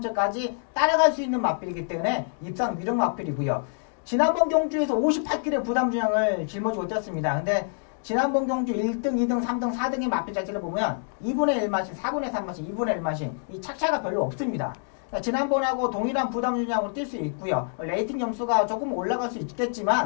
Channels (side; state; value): right; silent; 61 dB below the other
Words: 따라갈 수 있는 마필이기 때문에 입상 유력 마필이고요. 지난번 경주에서 58kg 부담 중량을 짊어지고 뛰었습니다. 근데 지난번 경주 1등, 2등, 3등, 4등의 마필 자체를 보면 2분의 1마신, 4분의 3마신, 2분의 1마신 이 착차가 별로 없습니다. 지난번하고 동일한 부담 중량으로 뛸 수 있고요. 레이팅 점수가 조금 올라갈 수